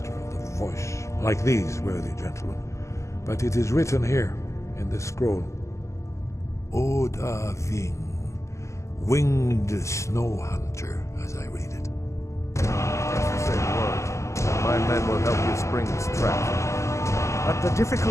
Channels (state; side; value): late; right; 0.14 ms